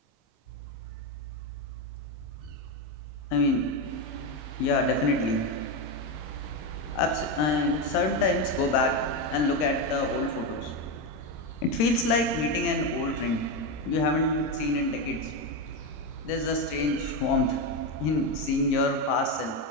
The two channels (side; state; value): right; late; 27 ms